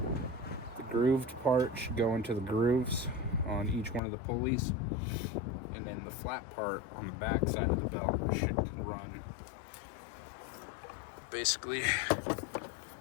grooved part should go into the grooves on each one of the pulleys, and then the flat part on the back side of the belt should run basically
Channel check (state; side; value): drops out; right; at 4.0 s